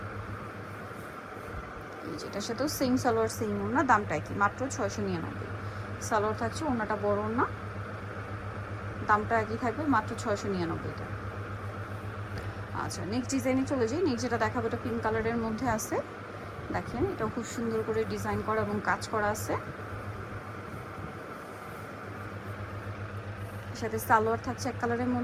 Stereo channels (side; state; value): both; identical; correlation 1.00